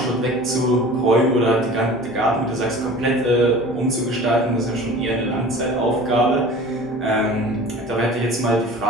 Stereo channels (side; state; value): both; normal; correlation 0.41